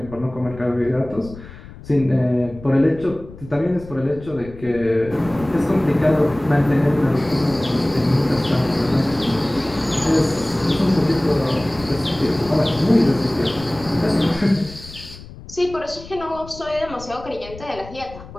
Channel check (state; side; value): noise; left; rumble, 16 dB below the sound